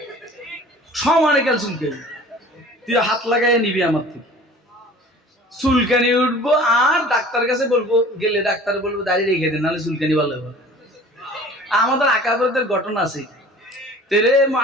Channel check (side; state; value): both; normal; correlation 0.45